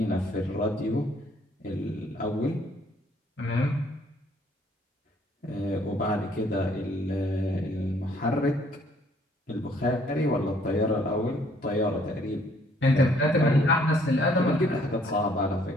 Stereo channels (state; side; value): normal; both; correlation 0.63